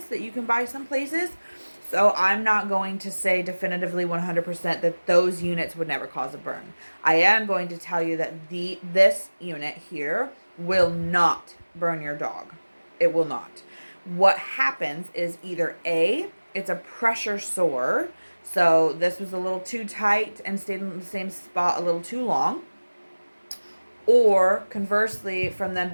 that you can buy some places. So I'm not going to say definitively 100% that those units would never cause a burn. I am going to tell you that this unit here will not burn your dog. It will not. What happens is either A, it's a pressure sore. So this was a little too tight and stayed in the same spot a little too long. Or conversely, from them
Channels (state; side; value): inverted; both; correlation -1.00